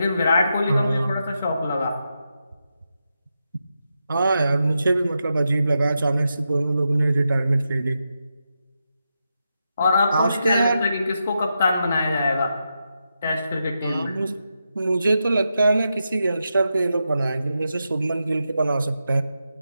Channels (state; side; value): inverted; both; correlation -0.86